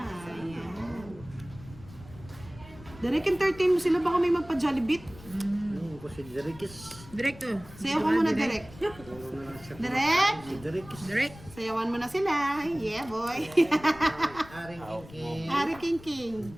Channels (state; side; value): noise; left; rumble, 19 dB below the sound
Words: Ayan. Direct entertain mo sila, baka may magpa-Jollibit. Ko si Derikis. Direkto. Sayaw ka muna, Direct. Direct! Si Derikis. Direct. Sayawan mo na sila. Yeah, boy. Aring King. Ari King King.